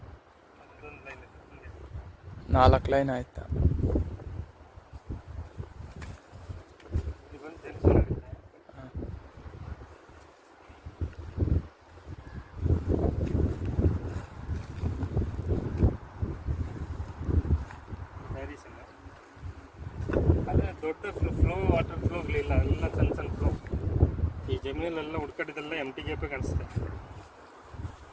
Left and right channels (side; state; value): both; identical; correlation 1.00